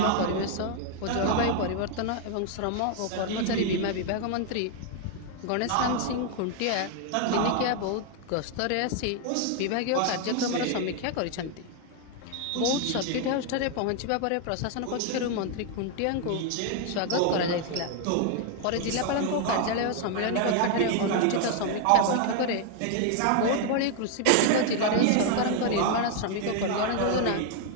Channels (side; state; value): both; different; correlation 0.00